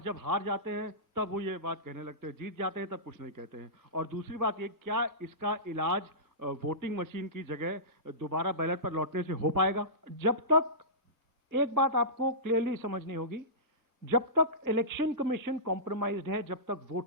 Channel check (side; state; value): both; normal; correlation -0.19